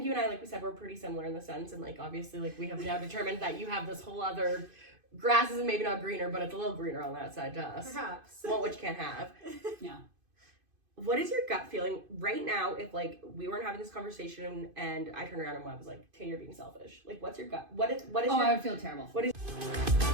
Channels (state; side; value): late; left; 2.5 ms